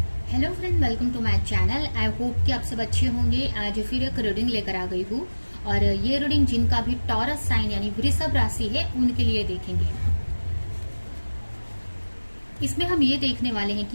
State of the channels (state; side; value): inverted; both; correlation -1.00